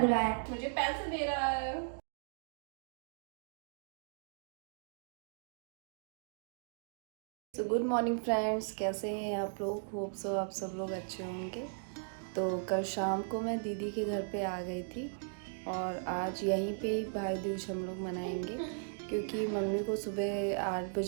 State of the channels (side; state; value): left; silent; digital silence